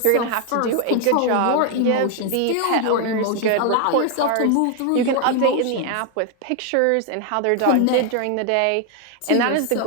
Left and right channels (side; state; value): both; different; correlation 0.01